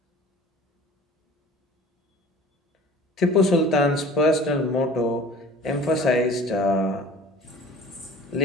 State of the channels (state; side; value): normal; both; correlation 0.44